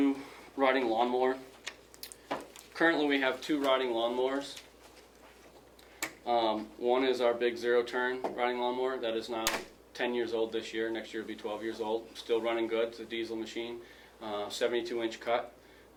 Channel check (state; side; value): identical; both; correlation 1.00